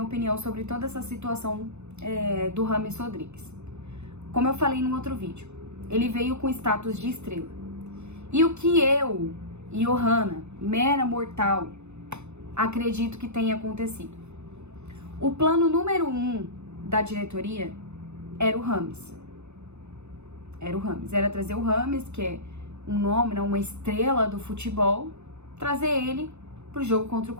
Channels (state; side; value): late; left; 0.82 ms